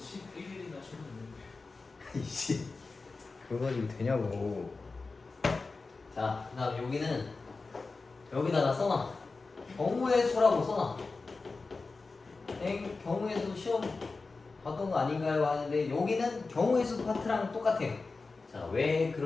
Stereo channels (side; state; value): right; quieter; 3.9 dB